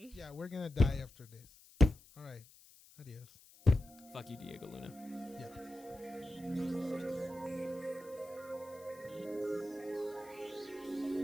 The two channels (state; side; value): noise; left; hiss, 23 dB below the sound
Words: Yeah, we're gonna die after this. All right. Adios. Fuck you, Diego Luna. Yeah.